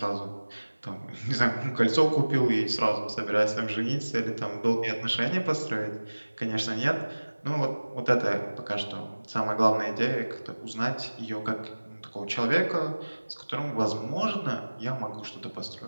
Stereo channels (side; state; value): both; inverted; correlation -1.00